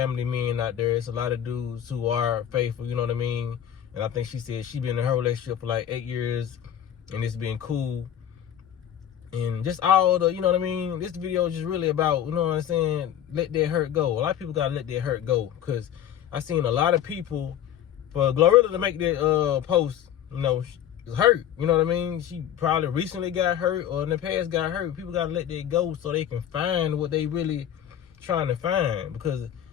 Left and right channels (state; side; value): quieter; right; 10.3 dB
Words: men out there. It's a lot of dudes who are faithful, you know what I mean? And I think she said she been in her relationship for like 8 years, and it's been cool. And just all the, you know what I mean? This video is just really about, you know what I'm saying, let that hurt go. A lot of people gotta let that hurt go, because I seen a lot of people, for Glorilla to make that post, you know, hurt. You know what I mean? She probably recently got hurt, or in the past got hurt. People gotta let that go so they can find what they really trying to find. Because